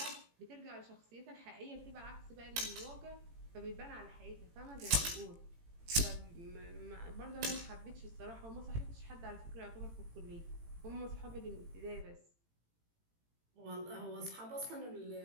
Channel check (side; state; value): left; late; 18 ms